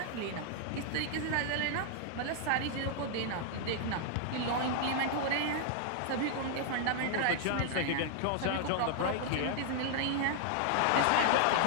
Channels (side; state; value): both; different; correlation 0.00